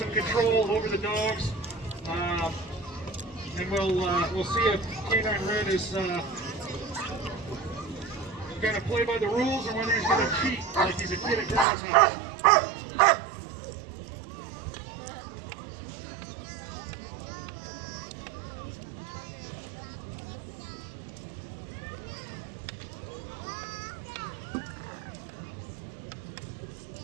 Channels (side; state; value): left; drops out; at 11.7 s